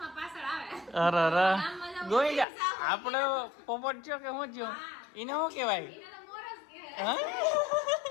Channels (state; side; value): drops out; right; at 2.5 s